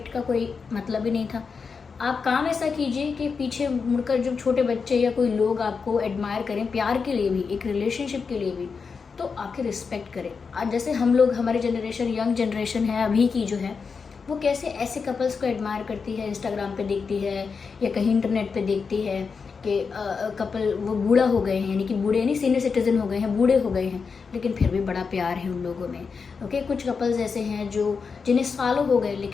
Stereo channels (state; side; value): quieter; right; 5.3 dB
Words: का कोई मतलब ही नहीं था। आप काम ऐसा कीजिए कि पीछे मुड़कर जब छोटे बच्चे या कोई लोग आपको एडमायर करें, प्यार के लिए भी, एक रिलेशनशिप के लिए भी, तो आपकी रिस्पेक्ट करें। आज जैसे हम लोग, हमारी जनरेशन, यंग जनरेशन है अभी की जो है, वो कैसे ऐसे कपल्स को एडमायर करती है, इंस्टाग्राम पे देखती है या कहीं इंटरनेट पे देखती है कि कपल वो बूढ़ा हो गए हैं, यानी कि बूढ़े नहीं, सीनियर सिटीजन हो गए हैं, बूढ़े हो गए हैं, लेकिन फिर भी बड़ा प्यार है उन लोगों में। ओके, कुछ कपल्स ऐसे हैं जो जिन्हें सालों हो गए